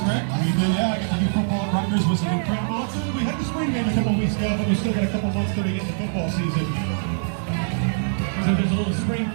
right? We did, yeah. I got to do football at Rutgers, was incredible. We had the spring game a couple weeks ago, but we still got a couple months till we get into football season. So there's a little spring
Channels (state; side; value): silent; left; digital silence